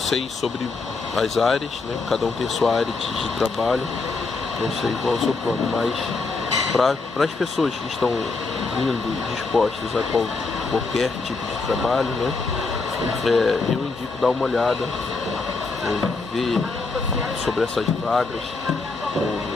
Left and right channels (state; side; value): quieter; right; 3.9 dB